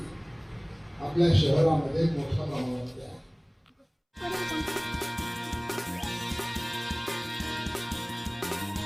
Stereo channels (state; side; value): identical; both; correlation 1.00